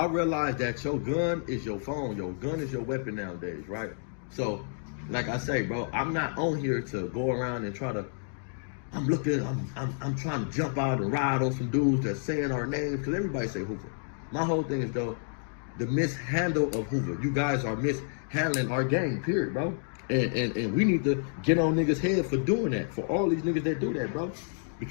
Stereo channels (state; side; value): silent; right; digital silence